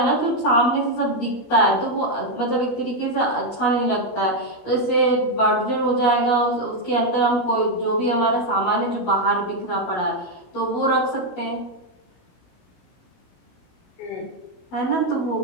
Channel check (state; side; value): late; right; 17 ms